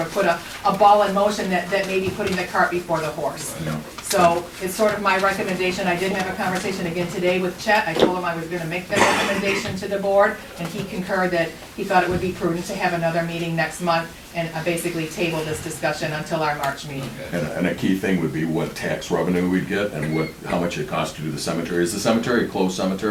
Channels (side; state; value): both; identical; correlation 1.00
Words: of put a ball in motion that may be putting the cart before the horse. Yeah. So it's sort of my recommendation. I did have a conversation again today with Chet. I told him I was gonna make that recommendation to the board, and he concurred that he thought it would be prudent to have another meeting next month and basically table this discussion until our March meeting. And a key thing would be what tax revenue we'd get and how much it costs to do the cemetery. Is the cemetery a closed